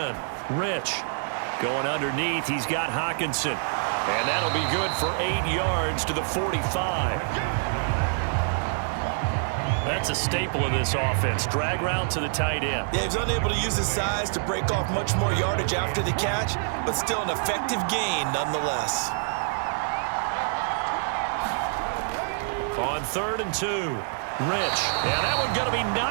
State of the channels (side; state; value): left; silent; 61 dB below the other